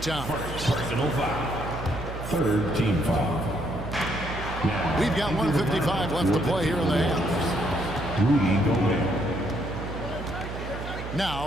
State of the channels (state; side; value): noise; right; hum, 8 dB below the sound